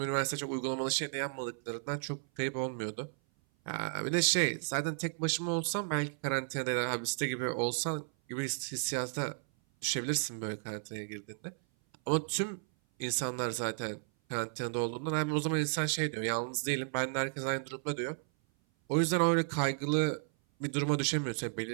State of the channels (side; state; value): left; silent; 55 dB below the other